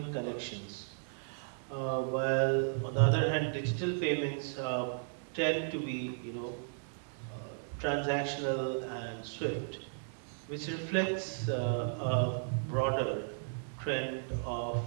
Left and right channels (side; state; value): left; silent; digital silence